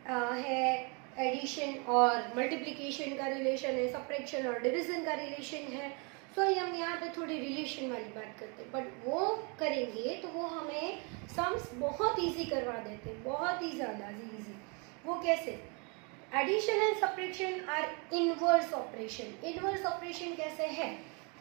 है, एडिशन और मल्टीप्लिकेशन का रिलेशन है, सब्ट्रैक्शन और डिवीजन का रिलेशन है। सो हम यहाँ पे थोड़ी रिलेशन वाली बात करते हैं, बट वो करेंगे तो वो हमें सम्स बहुत इजी करवा देते हैं, बहुत ही ज़्यादा इजी। वो कैसे? Addition and subtraction are inverse operation. Inverse operation कैसे है?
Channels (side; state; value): left; quieter; 33.4 dB